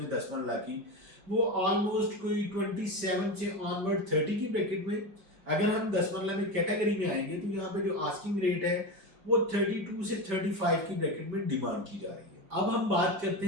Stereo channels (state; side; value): late; left; 4.8 ms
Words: 10 मरला की वो ऑलमोस्ट कोई 27 से ऑनवर्ड 30 की ब्रैकेट में। अगर हम 10 मरला में कैटेगरी में आएंगे तो यहाँ पे जो आस्किंग रेट है वो 32 से 35 की ब्रैकेट में डिमांड की जा रही है। अब हम बात करते